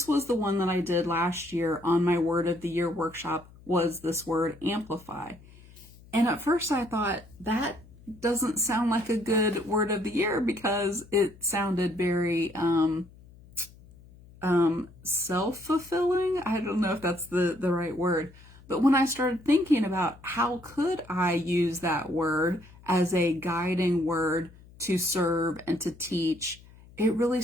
was the one that I did last year on my Word of the Year workshop, was this word amplify. And at first I thought, that doesn't sound like a good word of the year because it sounded very self-fulfilling. I don't know if that's the right word. But when I started thinking about how could I use that word as a guiding word to serve and to teach, it really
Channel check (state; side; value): noise; left; hum, 23 dB below the sound